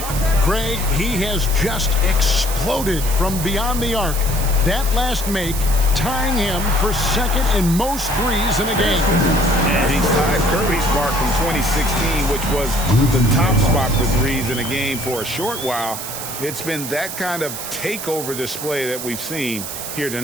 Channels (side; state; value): right; noise; hiss, 7 dB below the sound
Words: Craig, he has just exploded from beyond the arc. That last make tying him for second in most threes in a game. And he's tied Curry's mark from 2016, which was the top spot for threes in a game for a short while. It's been that kind of takeover display that we've seen here